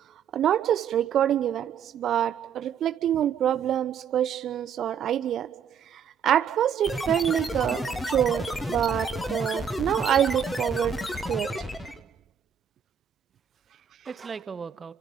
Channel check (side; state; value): left; quieter; 7.8 dB